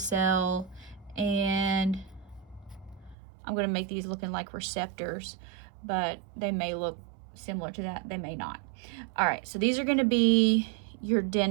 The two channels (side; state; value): left; drops out; at 3.2 s